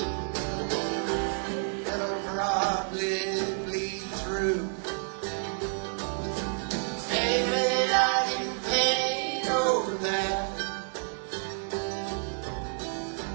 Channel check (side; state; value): left; silent; 58 dB below the other